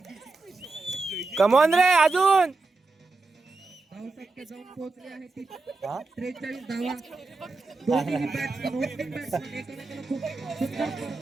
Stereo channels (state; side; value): quieter; left; 3.7 dB